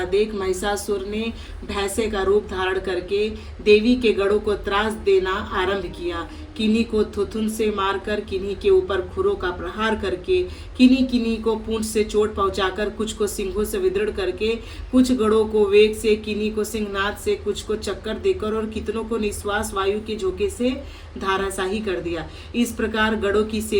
देख महिषासुर ने भैंसे का रूप धारण करके देवी के गढ़ों को त्रास देना आरंभ किया। किन्हीं को थुथुन से मारकर, किन्हीं के ऊपर खुरों का प्रहार करके, किन्हीं किन्हीं को पूंछ से चोट पहुंचाकर, कुछ को सिंहों से विदृढ़ करके, कुछ गढ़ों को वेग से, किन्हीं को सिंहनाद से, कुछ को चक्कर देकर और कितनों को निश्वास वायु के झोंके से धाराशाही कर दिया। इस प्रकार गढ़ों की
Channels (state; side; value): identical; both; correlation 1.00